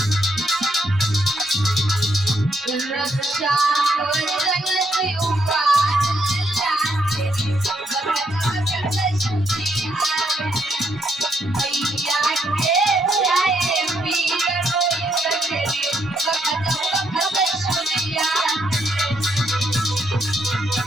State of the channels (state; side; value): normal; both; correlation 0.74